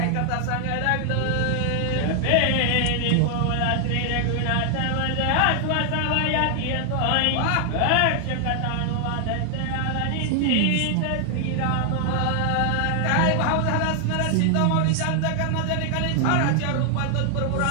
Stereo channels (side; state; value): both; different; correlation 0.00